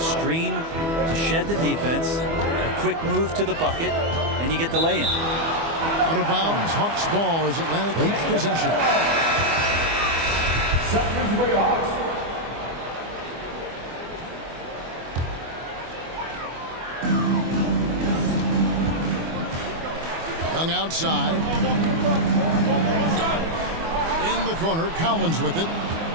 to shed the defense. A quick move to the bucket. And you get the lay-in. Out of bounds. Hawks ball as Atlanta keeps possession. For your Hawks. Young outside. In the corner, Collins with it.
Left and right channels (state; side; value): late; left; 24 ms